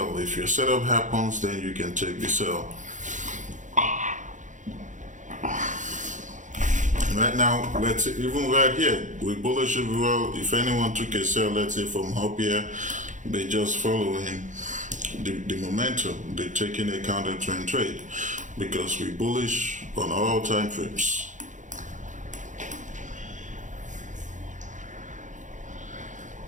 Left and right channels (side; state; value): left; late; 0.36 ms